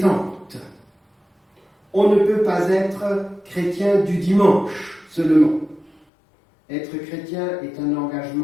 On ne peut pas être chrétien du dimanche seulement. Être chrétien est un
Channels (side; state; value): right; drops out; at 6.1 s